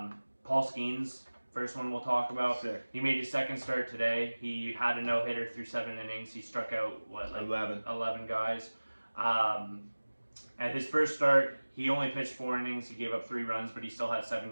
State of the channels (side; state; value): both; inverted; correlation -1.00